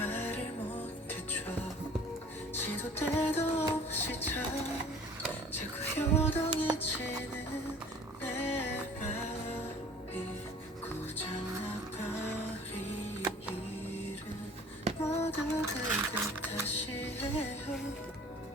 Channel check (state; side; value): normal; both; correlation 0.48